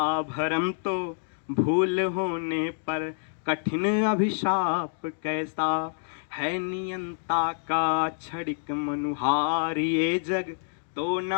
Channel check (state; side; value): silent; right; digital silence